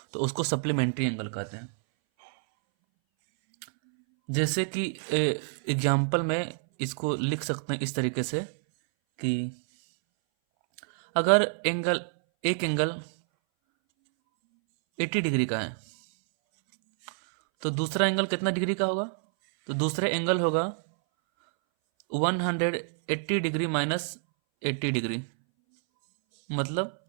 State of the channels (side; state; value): left; silent; 60 dB below the other